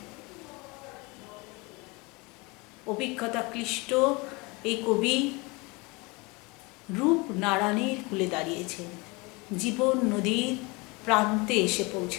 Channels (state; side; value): quieter; right; 26.5 dB